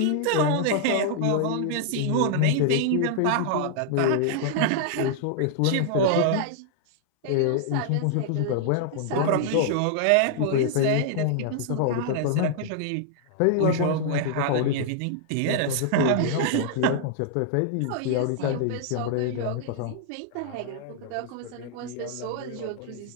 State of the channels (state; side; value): different; both; correlation -0.01